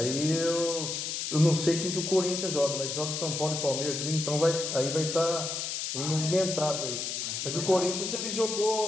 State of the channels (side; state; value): left; noise; hiss, 3 dB below the sound